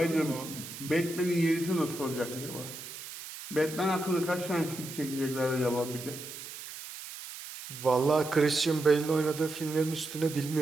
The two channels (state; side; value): noise; right; hiss, 11 dB below the sound